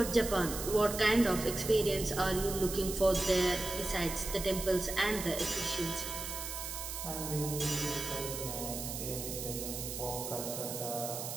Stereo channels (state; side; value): noise; right; hiss, 6 dB below the sound